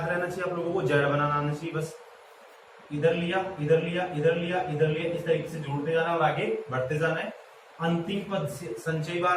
रहना चाहिए आप लोगों को, Z बनाना आना चाहिए। बस इधर लिया इधर लिया इधर लिया इधर लिया, इस तरीके से जोड़ते जाना और आगे बढ़ते जाना है। अंतिम पद संचयी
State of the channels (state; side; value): identical; both; correlation 1.00